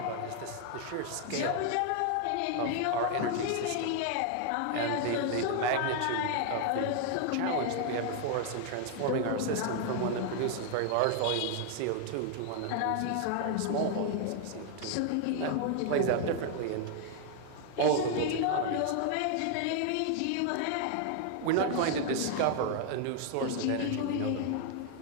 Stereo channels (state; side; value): different; both; correlation 0.00